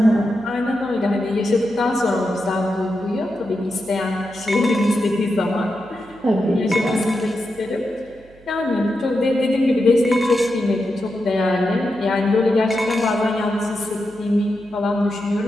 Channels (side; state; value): right; noise; hum, 26 dB below the sound